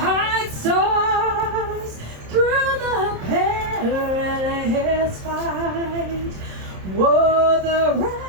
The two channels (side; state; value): left; late; 27 ms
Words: stars through the perilous fight. Whoa, the